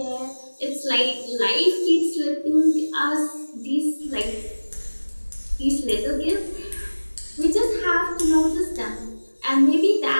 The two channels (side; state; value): both; inverted; correlation -1.00